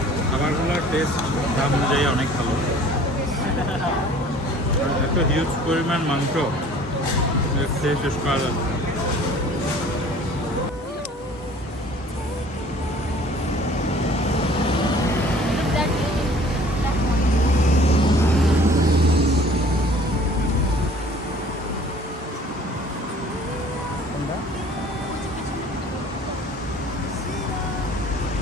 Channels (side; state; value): both; normal; correlation 0.50